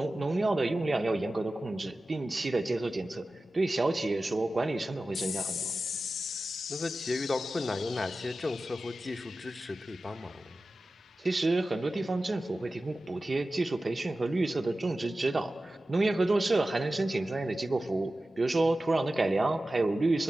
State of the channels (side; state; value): both; normal; correlation 0.95